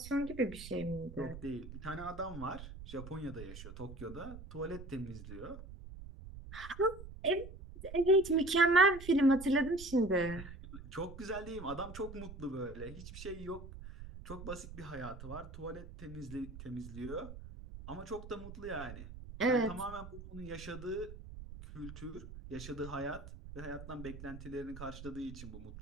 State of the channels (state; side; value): noise; right; rumble, 12 dB below the sound